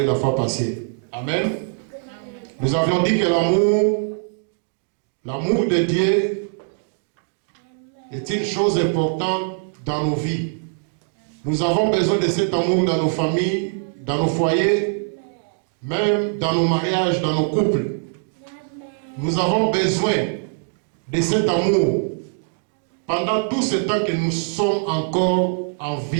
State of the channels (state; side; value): silent; left; 64 dB below the other